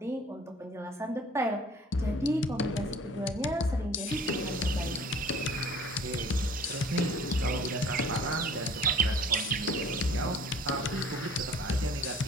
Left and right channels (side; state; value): both; normal; correlation 0.50